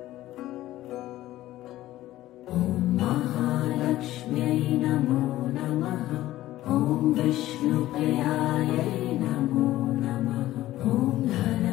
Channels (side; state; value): right; quieter; 15.1 dB